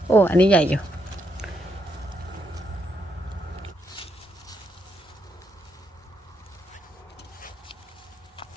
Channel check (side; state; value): both; normal; correlation 0.78